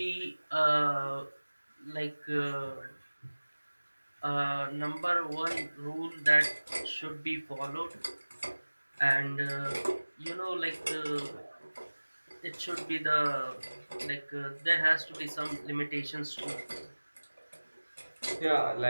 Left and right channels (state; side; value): inverted; both; correlation -1.00